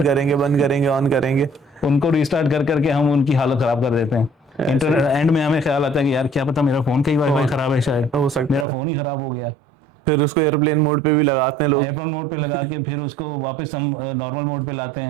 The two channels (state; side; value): drops out; left; at 8.7 s